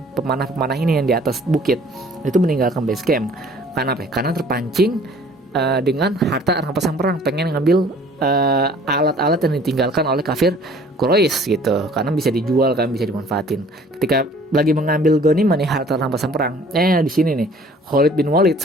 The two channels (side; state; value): both; normal; correlation 0.53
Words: pemanah-pemanah ini yang di atas bukit, itu meninggalkan base camp. Karena apa? Karena terpancing dengan harta rampasan perang, pengen ngambil alat-alat yang ditinggalkan oleh kafir Quraisy gitu, karena bisa dijual kan, bisa dimanfaatin. Ketika lagi mengambil ghanimah nih harta rampasan perang, di sini nih Khalid bin Walid